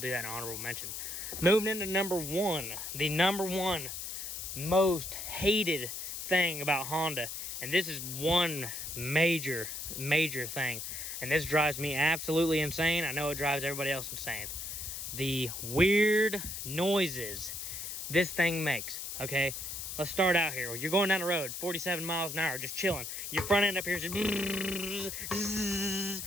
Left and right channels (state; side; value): noise; left; hiss, 6 dB below the sound